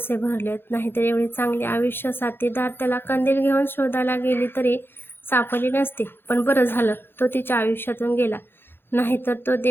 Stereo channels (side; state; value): right; late; 0.10 ms